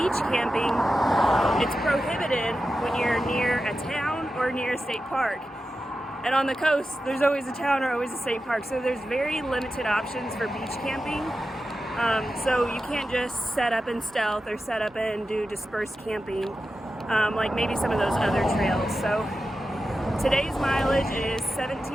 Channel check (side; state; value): both; normal; correlation 0.92